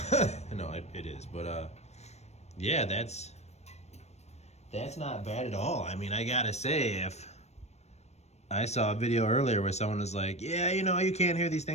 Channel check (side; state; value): right; late; 0.32 ms